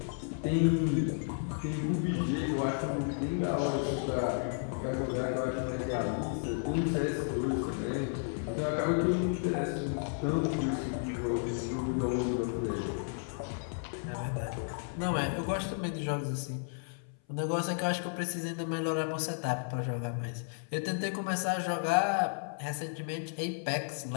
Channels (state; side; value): silent; right; 56 dB below the other